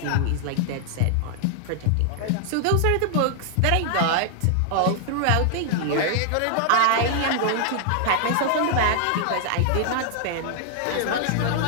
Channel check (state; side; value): different; both; correlation 0.00